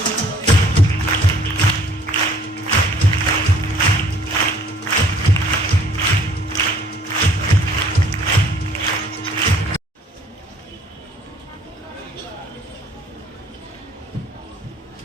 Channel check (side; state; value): both; normal; correlation 0.58